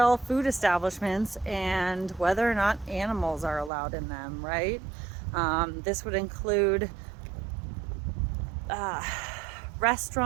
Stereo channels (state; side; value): drops out; left; at 3.7 s